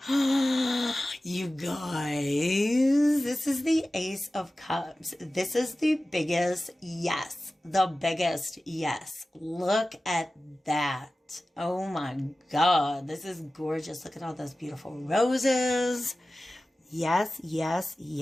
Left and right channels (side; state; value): both; normal; correlation 0.96